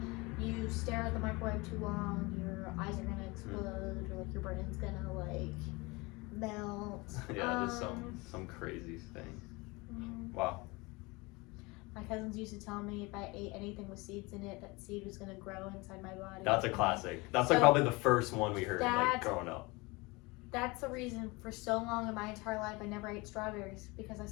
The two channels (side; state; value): right; quieter; 25.0 dB